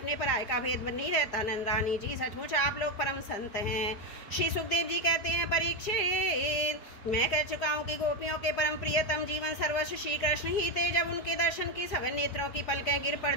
पराये का भेद नहीं रहता। नंद रानी जी, सचमुच आप लोग परम संत हैं। श्री सुखदेव जी कहते हैं, परीक्षित, मैं कह चुका हूँ कि गोपियों के परम प्रियतम जीवन सर्वस्व श्री कृष्ण ही थे। जब उनके दर्शन की सभी नेत्रों की पलकें गिर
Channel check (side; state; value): right; late; 4.9 ms